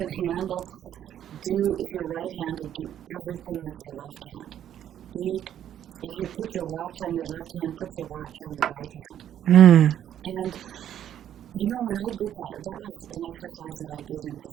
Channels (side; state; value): left; quieter; 10.5 dB